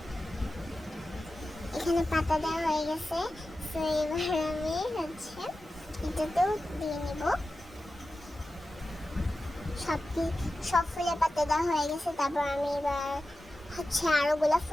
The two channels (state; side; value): normal; both; correlation 0.93